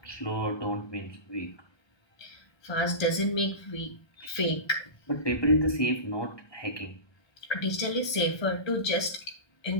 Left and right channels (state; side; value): late; right; 1.2 ms